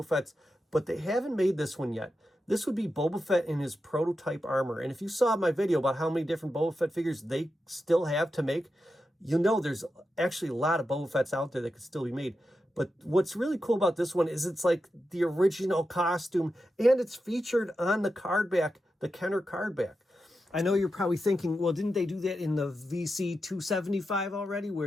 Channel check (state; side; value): normal; both; correlation 0.89